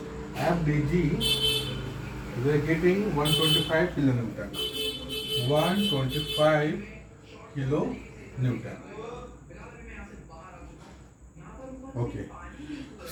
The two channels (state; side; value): identical; both; correlation 1.00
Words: FDG, we are getting 125 kilonewton. 125 kilonewton. Okay,